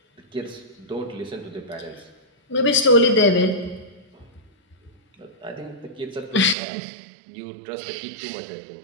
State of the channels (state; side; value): drops out; left; at 6.6 s